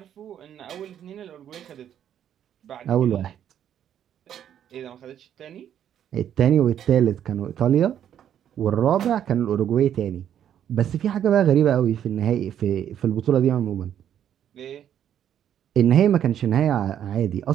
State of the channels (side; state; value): left; quieter; 9.9 dB